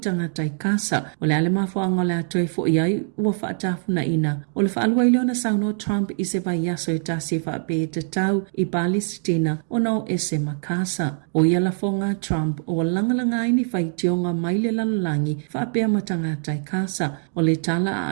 i kasa o le alema fo angola toi fo i ai ua whaatafu na ina. O le whaalua ileo na sauno Trump i se vai yaso i tasi whaape te tau i Palestina o nao ese makasa. O iala fonga Trump o langalanga ini whaitionga maile lalalangi whaapea matangata kasa o le tala a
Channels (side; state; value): left; silent; 63 dB below the other